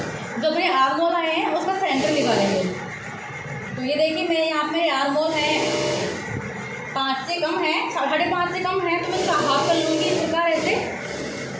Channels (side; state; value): both; identical; correlation 1.00